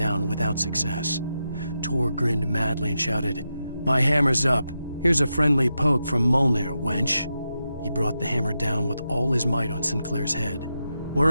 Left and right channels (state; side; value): inverted; both; correlation -0.87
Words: without success. Tor grinned madly and shouted, "My hammer's up. Here's a friendly poke from Molnir, wench." He brought the hammer down with all his might on Sinclair's head.